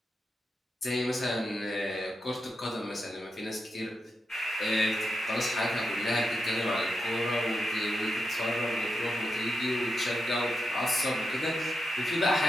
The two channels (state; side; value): normal; both; correlation 0.86